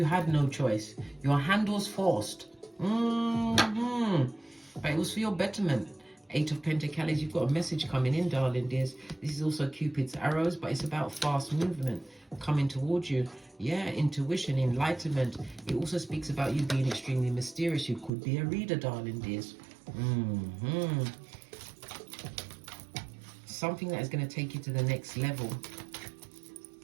had no choice. Your hand was forced. But it was for your betterment. Eight of Pentacles, you've got a message coming in, darling dears. This is also Cupid's arrows, but it's about fast movement coming towards you. Yeah, intuition, enlightenment. It also speaks about you being extremely mysterious. You could be a reader, darling dears. Something that is going to take you to the next level.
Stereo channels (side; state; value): left; drops out; at 18.1 s